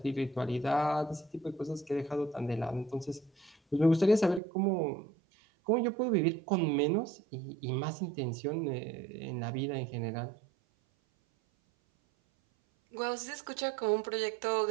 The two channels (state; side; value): drops out; left; at 4.4 s